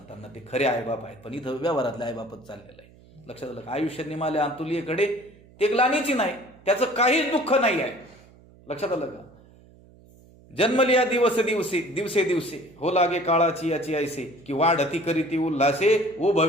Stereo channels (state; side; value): noise; right; hum, 25 dB below the sound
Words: ते खरे आईबाप आहेत, पण इथं व्यवहारातले आईबापच चाललेलं आहे. लक्षात आलं का? आयुष्य निमाले अंतुलीकडे ते ग्लानीची नाही, त्याचं काहीच दुःख नाही आहे. लक्षात आलं का? जन्मलिया दिवस दिवसे दिवसे दिवसे हो लागे काळाची याची ऐसे की वाढती करीती उल्हासे ओ